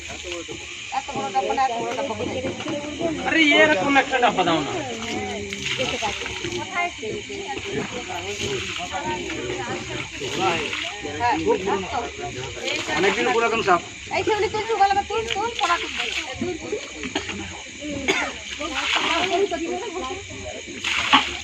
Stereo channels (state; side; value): identical; both; correlation 1.00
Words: আরে এরকম একটা ডাব্বা দাও না। অনেকদিন পুরাতন সাপ।